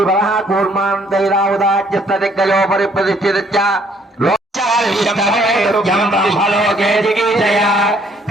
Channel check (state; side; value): normal; both; correlation 0.64